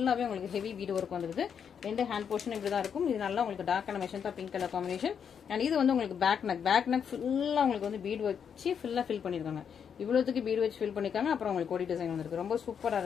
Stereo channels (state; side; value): quieter; right; 7.5 dB